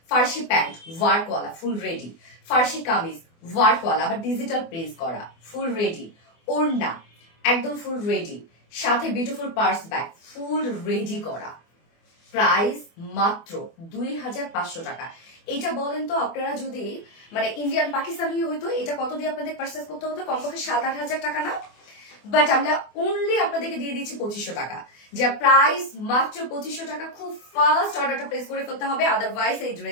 ফার্সি প্যান্ট ওয়ার্কওয়ালা ফুল রেডি, ফার্সি কামিজ ওয়ার্কওয়ালা আবার ডিজিটাল প্রিন্ট করা ফুল রেডি, ওড়না একদম ফুল রেডি, সাথে beautiful purse bag full ready করা, প্রাইস মাত্র 2500 টাকা। এটা বলেন তো আপনারা যদি মানে ইন্ডিয়ান পাকিস্তানি হইতো এটা কত দিয়ে আপনাদের পারচেস করতে হতো? কমপক্ষে 7-8 হাজার টাকা না? বাট আমরা অনলি আপনাদেরকে দিয়ে দিচ্ছি 2500 টাকা, যা প্রাইস মাত্র 2500 টাকা। খুব ফাস্ট অর্ডারটা প্লেস করে ফেলতে হবে, আদারওয়াইজ এই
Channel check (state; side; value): late; right; 24 ms